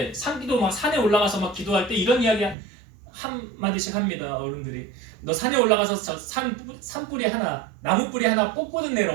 산기도 막 산에 올라가서 막 기도할 때 이런 이야기 한 마디씩 합니다. 어른들이 너 산에 올라가서 산뿌리 하나 나무뿌리 하나 뽑고는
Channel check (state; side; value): drops out; left; at 2.6 s